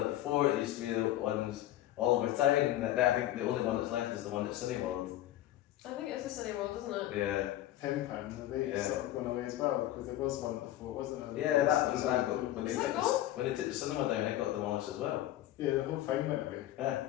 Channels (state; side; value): quieter; right; 14.0 dB